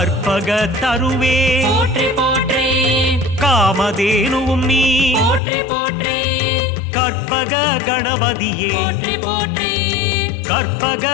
தருவே போற்றி போற்றி காமதேனுவும் நீ போற்றி போற்றி கற்பக கணபதியே போற்றி போற்றி கற்பக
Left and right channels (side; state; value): right; drops out; at 5.4 s